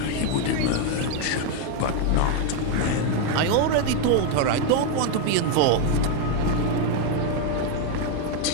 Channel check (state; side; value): different; both; correlation 0.01